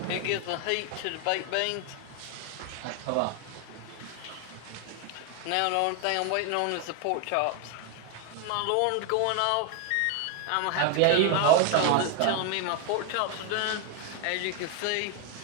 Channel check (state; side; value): different; both; correlation 0.01